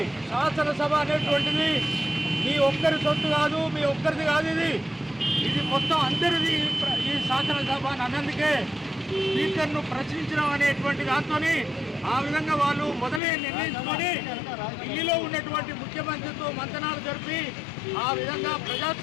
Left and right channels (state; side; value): drops out; right; at 13.2 s